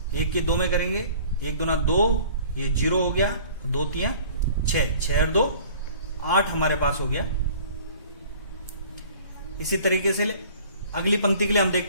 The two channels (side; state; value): both; inverted; correlation -0.49